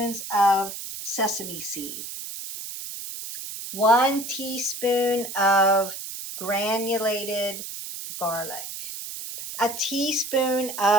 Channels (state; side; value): noise; right; hiss, 8 dB below the sound